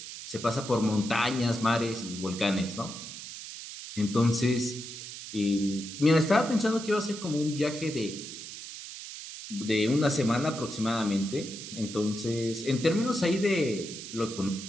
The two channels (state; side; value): noise; right; hiss, 11 dB below the sound